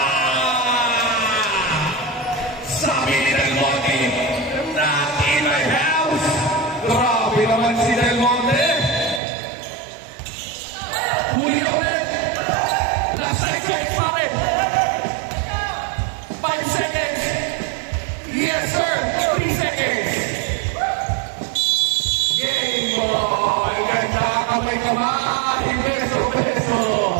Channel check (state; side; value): drops out; left; at 9.2 s